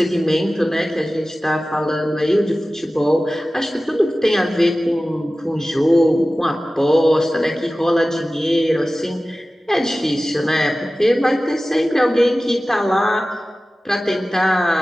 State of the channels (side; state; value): both; normal; correlation 0.96